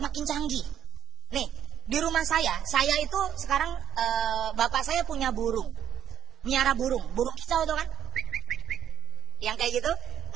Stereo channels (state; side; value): quieter; left; 10.3 dB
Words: canggih. Nih, di rumah saya itu sekarang bapak saya punya burung. Miara burung kicau itu kan? Yang kayak gitu.